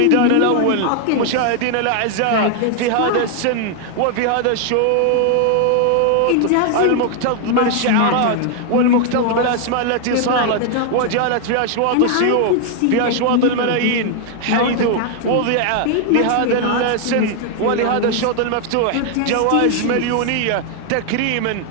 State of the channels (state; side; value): different; both; correlation 0.00